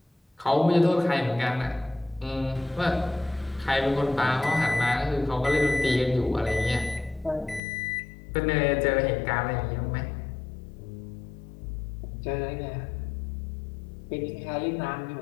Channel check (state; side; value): drops out; right; at 7.6 s